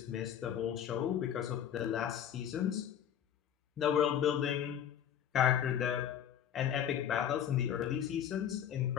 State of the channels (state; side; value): quieter; right; 9.6 dB